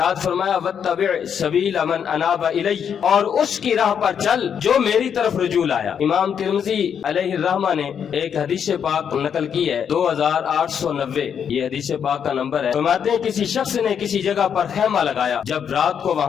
فرمایا واتبع سبیل من اناب الی، اور اس کی راہ پر چل جو میری طرف رجوع آیا۔ امام ترمذی علیہ الرحمہ نے ایک حدیث پاک نقل کی ہے 2890، یہ حدیث پاک کا نمبر ہے۔ فرماتے ہیں کسی شخص نے کسی جگہ پر خیمہ لگایا، جب رات کو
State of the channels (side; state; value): right; quieter; 7.8 dB